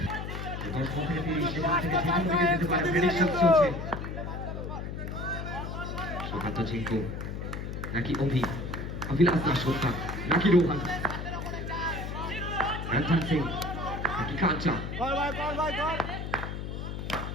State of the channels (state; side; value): noise; left; hum, 6 dB below the sound